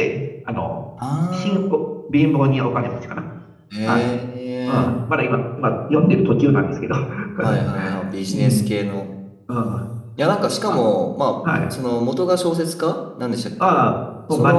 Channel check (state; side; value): identical; both; correlation 1.00